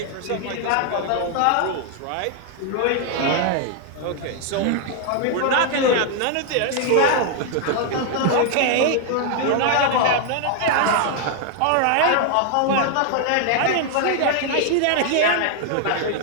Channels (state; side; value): different; both; correlation 0.00